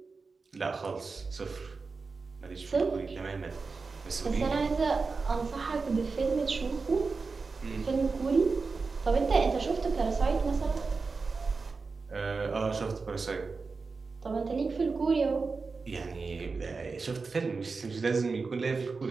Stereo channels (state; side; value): quieter; left; 4.4 dB